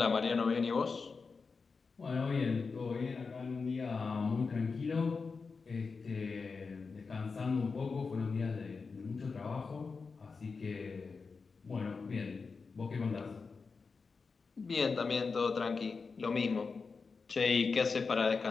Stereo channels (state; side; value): quieter; right; 4.7 dB